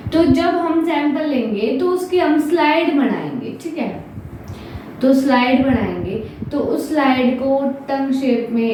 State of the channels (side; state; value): both; identical; correlation 1.00